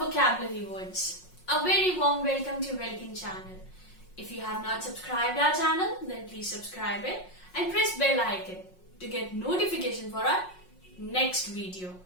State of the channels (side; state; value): right; late; 5.5 ms